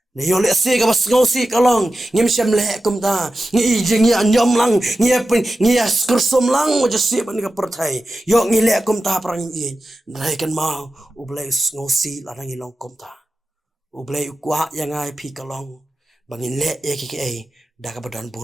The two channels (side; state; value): both; normal; correlation 0.93